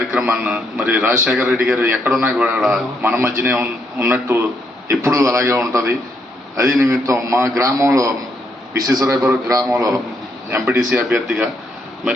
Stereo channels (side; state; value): both; normal; correlation 0.76